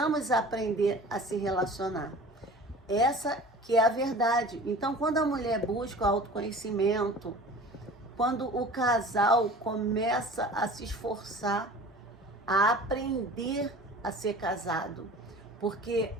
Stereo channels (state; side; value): normal; both; correlation 0.42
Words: aprender a se relacionar. Essa que é a verdade. Então, quando a mulher busca o autoconhecimento, quando o casal começa a se esforçar, a aprender a ser casado, porque